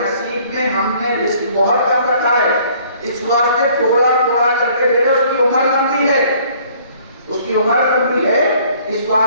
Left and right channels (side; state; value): both; inverted; correlation -0.58